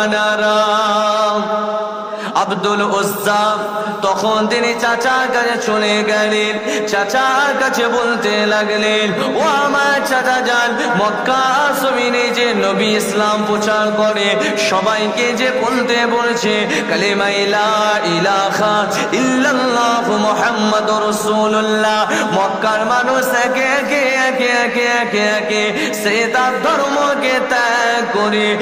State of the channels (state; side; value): identical; both; correlation 1.00